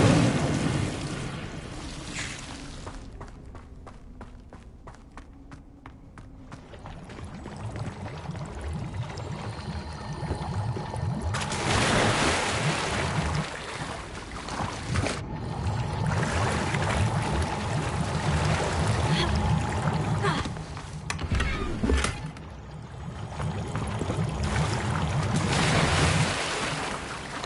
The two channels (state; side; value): identical; both; correlation 1.00